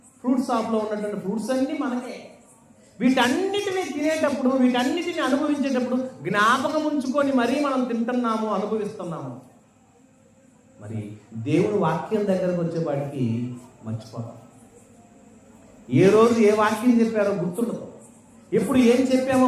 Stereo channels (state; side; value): identical; both; correlation 1.00